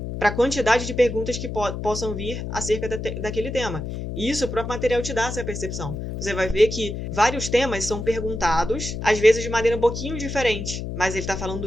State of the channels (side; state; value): left; noise; hum, 6 dB below the sound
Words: para a quantidade de perguntas que possam vir acerca daquele tema. E isso o próprio material te dá essa percepção. Você vai ver que vários temas são perguntados, às vezes de maneira um pouquinho diferente, mas ele está falando